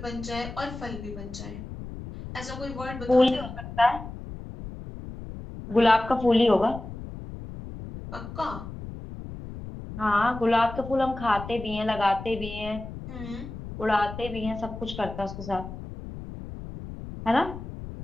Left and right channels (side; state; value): left; noise; rumble, 11 dB below the sound